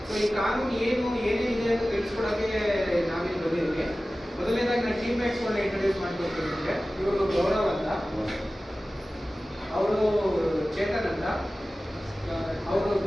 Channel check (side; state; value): both; normal; correlation 0.96